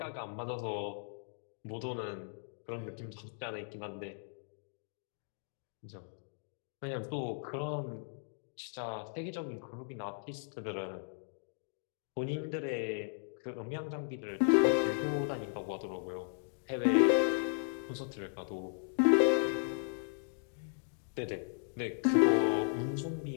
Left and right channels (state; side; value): silent; right; digital silence